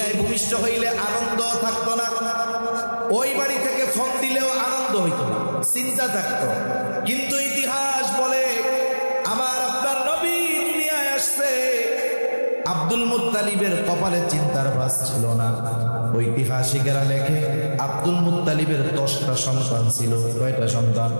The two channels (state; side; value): inverted; both; correlation -1.00